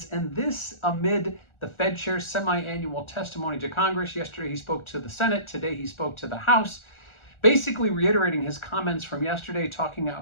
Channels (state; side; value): late; right; 1.4 ms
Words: and this amid the Fed chair's semi-annual testimony to Congress. Yesterday he spoke to the Senate, today he spoke to the House, basically reiterating his comments from yesterday, talking